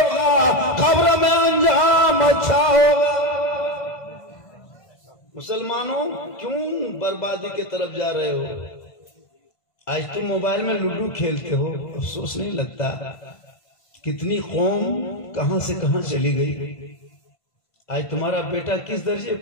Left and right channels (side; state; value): right; late; 1.5 ms